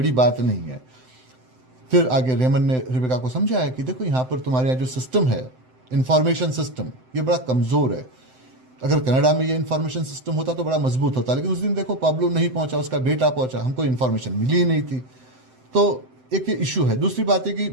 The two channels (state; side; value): late; left; 7.8 ms